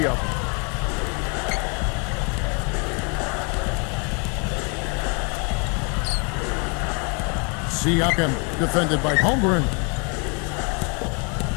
of them. Siakam defended by Holmgren.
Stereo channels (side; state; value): right; quieter; 34.7 dB